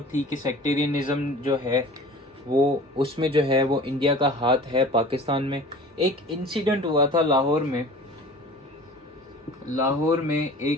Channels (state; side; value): normal; both; correlation 0.42